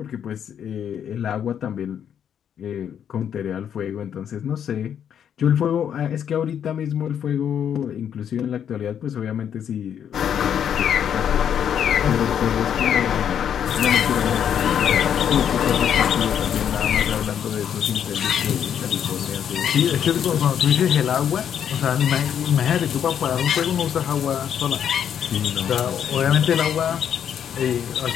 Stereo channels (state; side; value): quieter; right; 8.8 dB